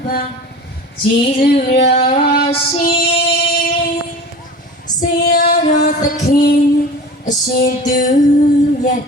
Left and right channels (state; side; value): normal; both; correlation 0.37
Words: ပါကျေးဇူးတော်ရှင်ဆရာတော်သခင်အရှင်သူမြတ်